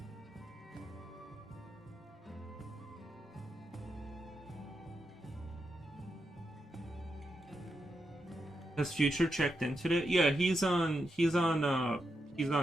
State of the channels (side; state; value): both; normal; correlation 0.85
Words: Has Future checked in today? Yeah, he's on the